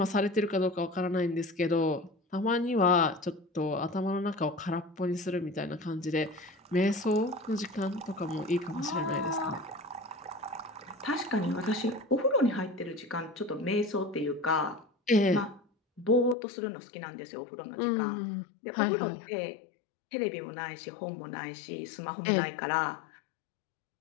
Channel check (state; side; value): drops out; right; at 16.4 s